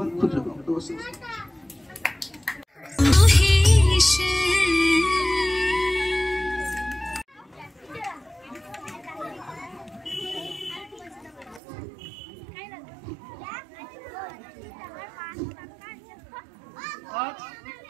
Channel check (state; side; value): drops out; left; at 11.6 s